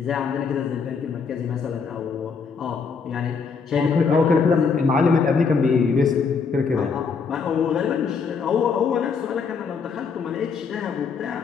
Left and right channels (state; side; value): quieter; right; 5.5 dB